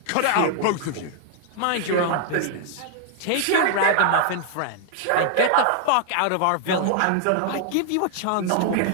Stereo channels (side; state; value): both; different; correlation 0.00